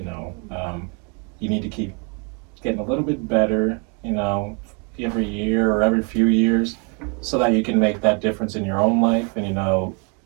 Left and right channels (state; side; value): quieter; left; 35.6 dB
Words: know, you need to keep getting a little bit better. You know, every year or every few years, so that you can make that difference in your own life, and you know,